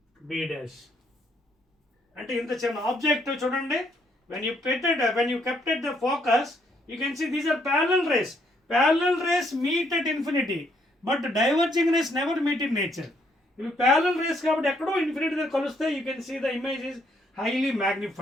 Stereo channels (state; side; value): normal; both; correlation 0.71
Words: B dash. అంటే ఇంత చిన్న ఆబ్జెక్ట్ చూడండి, when you kept at the focus, you can see these are parallel rays. Parallel rays meet at infinity, but diverging rays never meet in nature. ఇవి parallel rays కాబట్టి ఎక్కడో ఇన్ఫినిటీ దగ్గర కలుస్తే you can see the image is highly